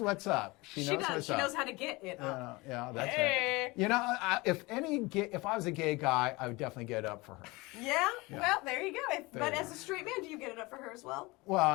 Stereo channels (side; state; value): right; quieter; 23.4 dB